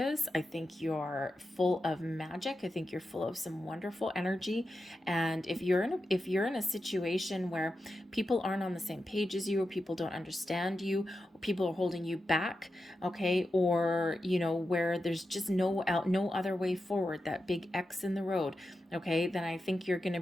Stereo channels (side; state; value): both; normal; correlation 0.90